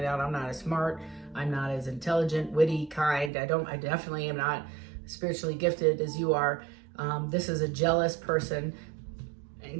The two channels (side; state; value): left; drops out; at 3.3 s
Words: out I'm not as smart. I'm not as intelligent, witty, kind. I definitely am not spiritually gifted as you are. This is a jealous person.